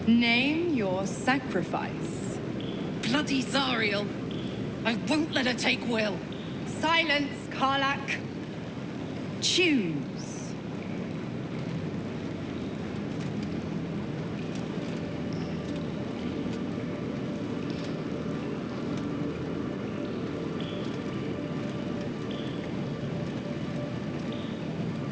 Name your sacrifice. Bloody Zariel! I won't let her take Wyll. Silence, Karlach. Choose.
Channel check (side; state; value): both; identical; correlation 1.00